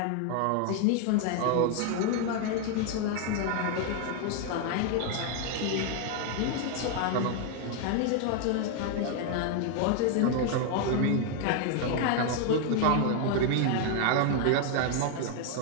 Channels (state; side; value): different; both; correlation 0.01